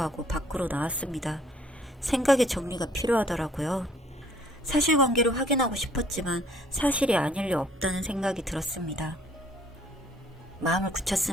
밖으로 나왔습니다. 생각의 정리가 필요하더라고요. 사실관계를 확인하고 싶었지만 사실이 아닐 리 없다는 생각이 들었습니다. 마음을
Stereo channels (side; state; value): both; normal; correlation 0.60